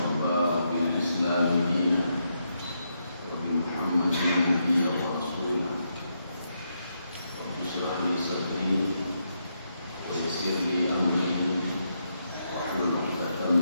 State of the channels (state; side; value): inverted; both; correlation -0.81